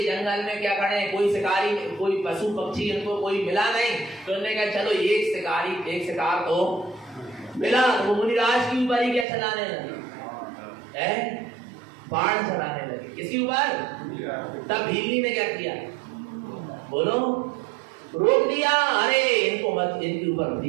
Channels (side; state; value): left; drops out; at 9.2 s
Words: जंगल में क्या करें, कोई शिकारी, कोई पशु पक्षी इनको कोई मिला नहीं, तो उन्होंने कहा चलो एक शिकार तो मिला। तो वो मुनिराज के ऊपर ही क्या चलाने लगे, बाण चलाने लगे। किसके ऊपर? तब भीलनी ने क्या किया, बोलो, रोक दिया। अरे इनको मत, इनके ऊपर